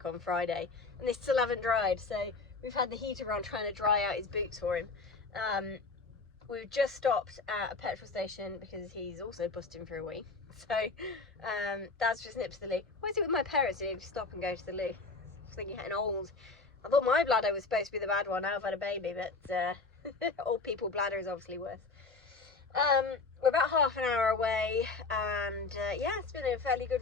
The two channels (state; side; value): quieter; right; 4.0 dB